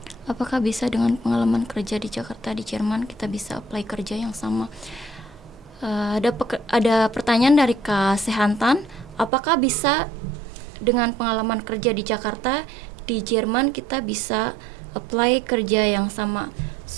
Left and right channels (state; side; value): drops out; left; at 9.3 s